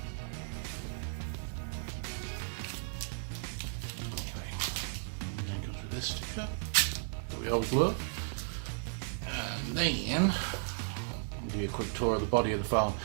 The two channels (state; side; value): silent; left; digital silence